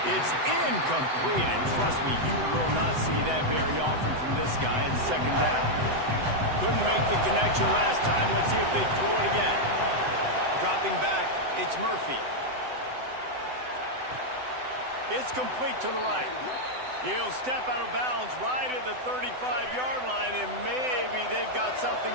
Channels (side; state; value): left; late; 7.9 ms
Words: It's incomplete, and trust me, you will not see that very often from this guy at 2nd down. Couldn't make the connection last time. Let's see if they throw it again. Dropping back, it's Murphy. It's complete to the right. He'll step out of bounds right at the 35-yard line, and maybe they've got something